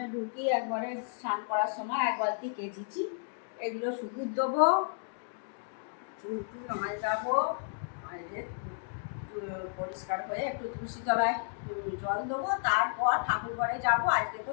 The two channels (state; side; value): silent; right; digital silence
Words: ঢুকি একবারে স্নান করার সময় 1 বালতি কেচেছি। এগুলো শুকুর দেবো, চুল যাবো, পরিষ্কার হয়ে একটু তুলসী তলায় জল দেবো, তারপর ঠাকুর ঘরে যাবো। আজকে তো